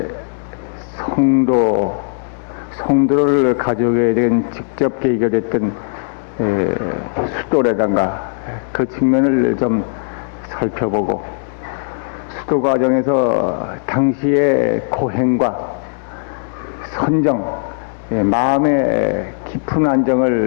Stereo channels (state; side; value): silent; right; digital silence